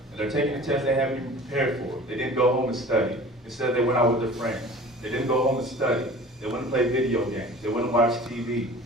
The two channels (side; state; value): both; normal; correlation 0.42